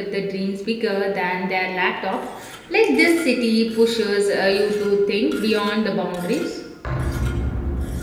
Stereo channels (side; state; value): both; identical; correlation 1.00